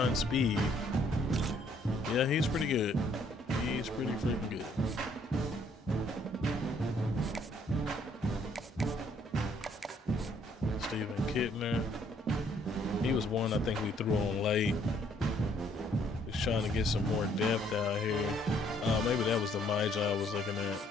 speed. Yeah, he's pretty good. He's pretty freaking good. Steven Kittner. He was one I think we threw on late. He's trying to get some more depth out here. Maybe that was the Magi I was looking at.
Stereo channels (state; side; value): normal; both; correlation 0.65